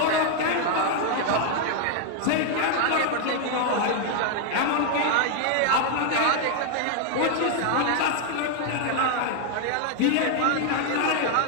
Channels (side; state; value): both; different; correlation 0.00